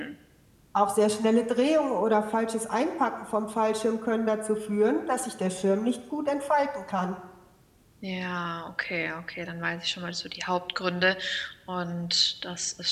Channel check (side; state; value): both; identical; correlation 1.00